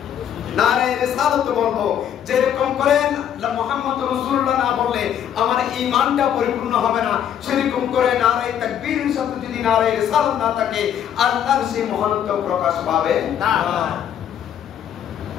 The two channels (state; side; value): quieter; right; 9.6 dB